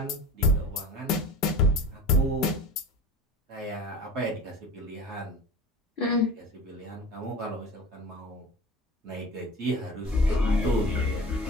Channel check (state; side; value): normal; both; correlation 0.36